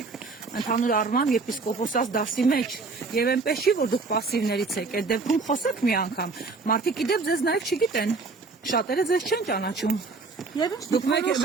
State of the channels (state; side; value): quieter; left; 4.1 dB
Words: ընդհանուր առմամբ եպիսկոպոսած դասի մեջ եւ այնպես չի, որ դուք պասիվներից եք, այդ դեպքում խոսեք մի անգամ, մարդիկ իդեպ ձեզ նաեւ չգիտեն, շատերը ձեզ չեն ճանաչում։ Դուք